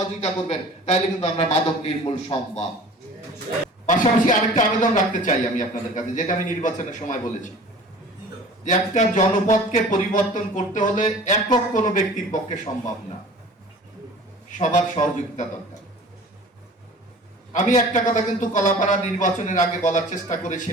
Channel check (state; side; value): normal; both; correlation 0.44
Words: করবেন, তাহলে কিন্তু আমরা মাদক নির্মূল সম্ভব। পাশাপাশি আরেকটা আবেদন রাখতে চাই আমি আপনাদের কাছে, যেটা আমি নির্বাচনের সময় বলেছি, যে একটা জনপদকে পরিবর্তন করতে হলে একক কোনো ব্যক্তির পক্ষে সম্ভব না, সবার সহযোগিতা দরকার। আমি একটা কথা কিন্তু কলাপাড়া নির্বাচনের আগে বলার চেষ্টা